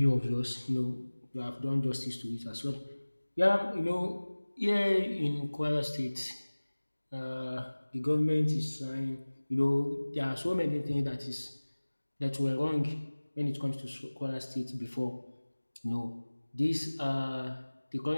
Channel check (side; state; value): both; inverted; correlation -1.00